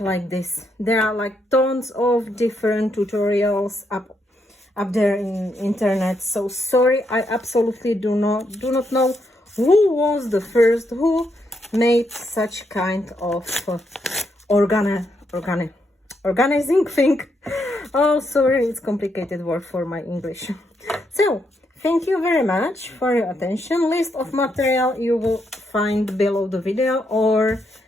this. There are like tons of different tutorials up there in internet. So sorry, I absolutely do not know who was the first who made such kind of organizing thing. Oh, sorry, it's complicated word for my English. So thank you very much for your attention. List of material you will find below the video or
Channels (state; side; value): normal; both; correlation 0.79